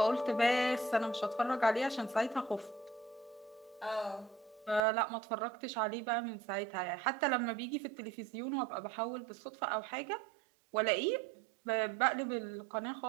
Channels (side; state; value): left; drops out; at 4.8 s